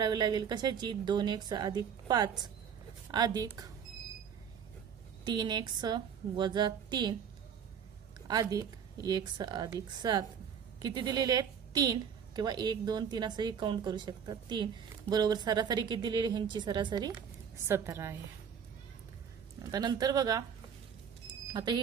लागेल. कशाची? 2x अधिक 5 अधिक 3x वजा 3 अधिक x अधिक 7 किती दिलेले आहेत? 3 किंवा 1 2 3 असंही काउंट करू शकतात. 3 बरोबर सरासरी किती दिलेली? ह्यांची सरासरी 17 आहे. आता नंतर बघा आता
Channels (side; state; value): left; quieter; 7.6 dB